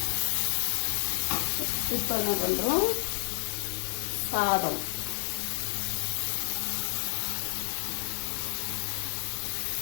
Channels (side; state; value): right; silent; 57 dB below the other